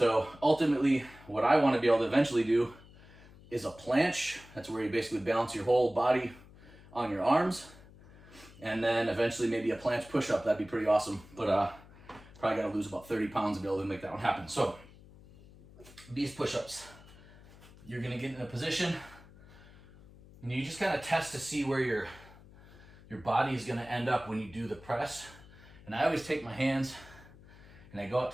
ultimately, what I want to be able to eventually do is a planche. That's where you basically balance your whole body on your arms. And then eventually maybe a planche push-up. That'd be pretty awesome. But probably got to lose about 30 pounds to be able to make that one happen. So these push-ups, you're going to get in a position and you just kind of test to see where your body is going to end up when you do the press. And I always take my hands and I go out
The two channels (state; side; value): noise; left; hum, 21 dB below the sound